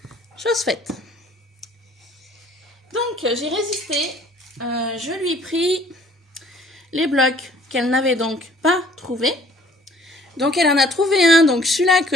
chose faite. Donc j'ai résisté, je lui ai pris les blocs qu'elle n'avait donc pas trouvé. Donc elle en a trouvé un, donc celui-là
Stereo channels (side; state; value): both; normal; correlation 0.56